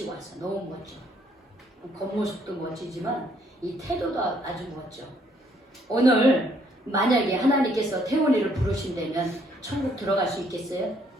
왔어. 너무 멋져. 겉모습도 멋지지만 이 태도도 아주 멋져. 오늘 만약에 하나님께서 태훈이를 부르신다면 천국 들어갈 수 있겠어요?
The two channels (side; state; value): both; normal; correlation 0.67